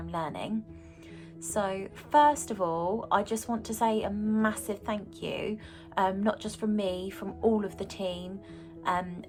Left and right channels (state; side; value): identical; both; correlation 1.00